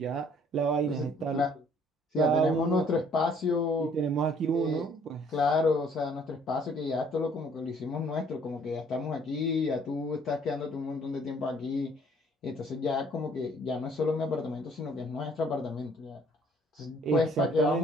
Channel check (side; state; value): both; normal; correlation 0.60